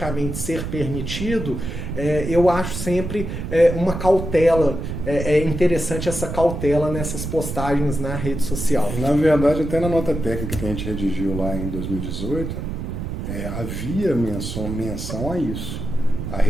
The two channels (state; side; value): noise; right; rumble, 5 dB below the sound